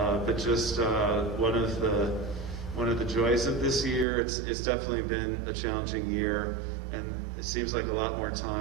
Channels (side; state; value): left; drops out; at 4.0 s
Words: but just one of the joys of this year, it's definitely been a challenging year, and it seems like a lot more